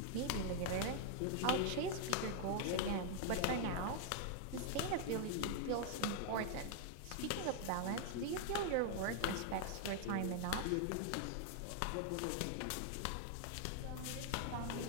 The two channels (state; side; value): different; both; correlation 0.00